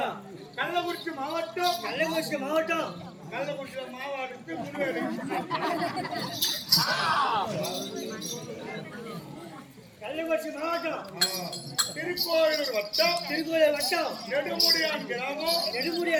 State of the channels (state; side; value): identical; both; correlation 1.00